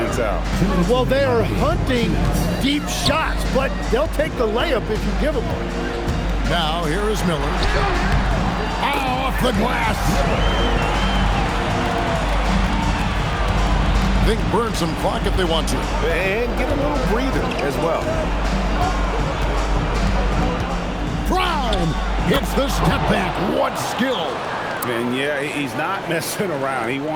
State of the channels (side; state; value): both; identical; correlation 1.00